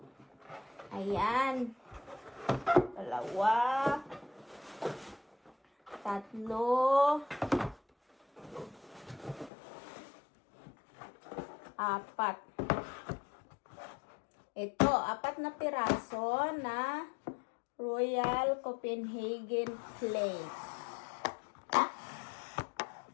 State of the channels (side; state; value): right; drops out; at 9.5 s